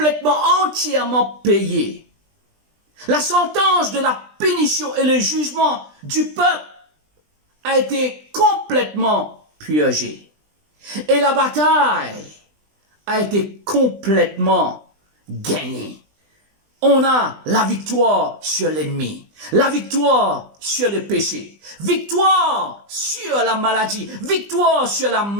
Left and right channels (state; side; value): late; left; 20 ms